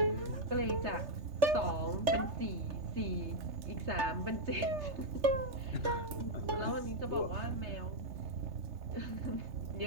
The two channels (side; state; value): left; late; 3.3 ms